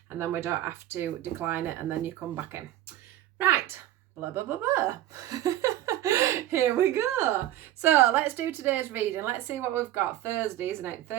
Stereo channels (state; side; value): quieter; left; 13.4 dB